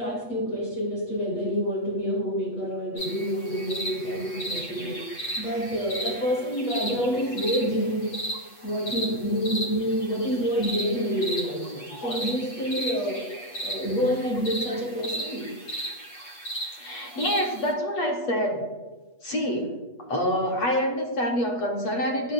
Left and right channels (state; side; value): late; right; 8.2 ms